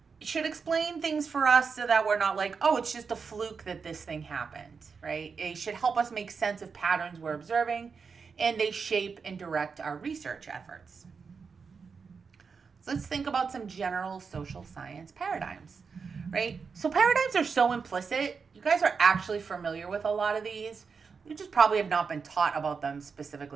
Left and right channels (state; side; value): quieter; left; 5.4 dB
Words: should explain things for us so that we're not like, oh, it's just a fluke that this thing happened, right? It should help us make sense of patterns we're observing, and they shape and direct our research efforts. Let's think about some general social science paradigms, right? So paradigms are so implicit. You guys are actually familiar with a lot of these. You just probably have not been taught about them